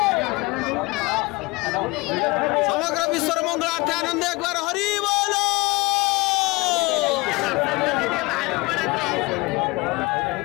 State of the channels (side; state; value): right; quieter; 23.9 dB